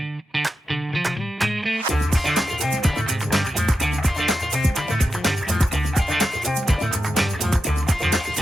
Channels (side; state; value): both; normal; correlation 0.88